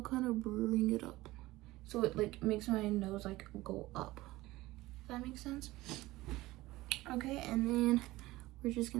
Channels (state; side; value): quieter; left; 18.5 dB